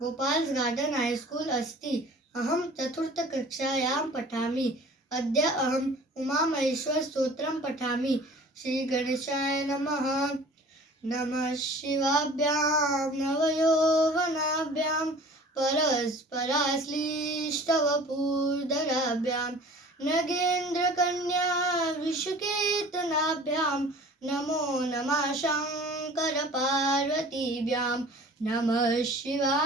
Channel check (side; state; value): both; normal; correlation 0.46